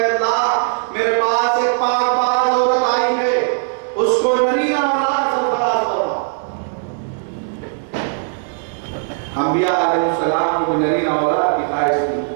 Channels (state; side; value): silent; left; 62 dB below the other